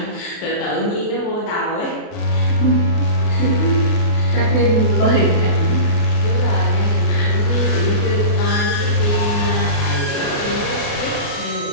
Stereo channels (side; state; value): right; late; 28 ms